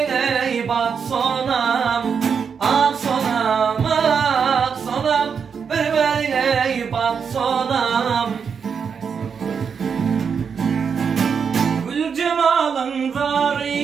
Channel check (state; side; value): quieter; left; 6.4 dB